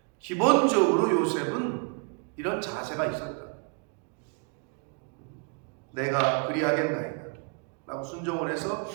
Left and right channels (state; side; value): quieter; left; 36.5 dB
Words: 기본적으로 요셉은 이런 자세가 있었다. 내가 그리하겠나이다 라고 순종을 해서